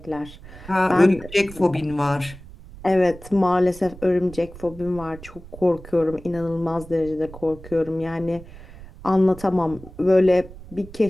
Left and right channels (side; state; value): right; noise; rumble, 17 dB below the sound